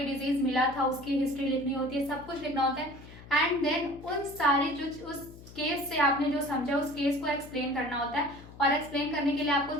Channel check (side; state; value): left; noise; hum, 18 dB below the sound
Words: डिजीज मिला था उसकी हिस्ट्री लिखनी होती है, सब कुछ लिखना होता है। एंड देन उन सारे जो उस केस से आपने जो समझा उस केस को एक्सप्लेन करना होता है, और एक्सप्लेन करने के लिए आपको